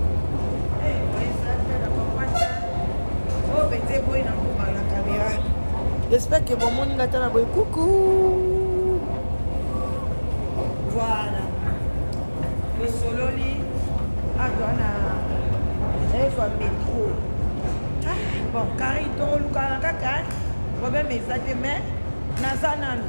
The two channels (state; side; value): inverted; both; correlation -1.00